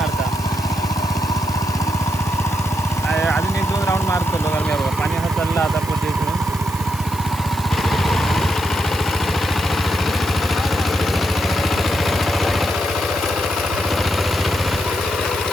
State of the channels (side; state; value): right; noise; hiss, 15 dB below the sound